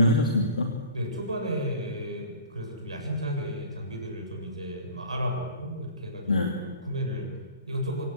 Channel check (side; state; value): both; inverted; correlation -0.41